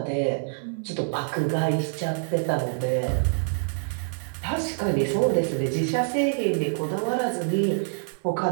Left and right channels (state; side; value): silent; left; 61 dB below the other